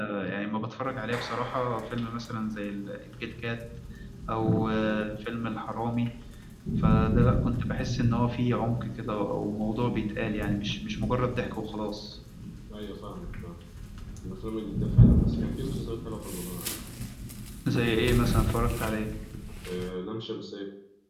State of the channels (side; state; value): both; identical; correlation 1.00